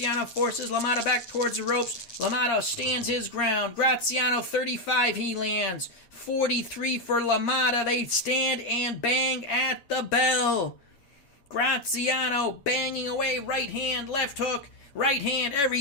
forces LaMotta back towards the ropes, LaMotta stands his ground. Graziano 35, he lands. 43 for LaMotta. They stand and bang at the bell. Graziano banging away, right hand, left hook, right hand,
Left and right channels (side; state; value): right; late; 8.6 ms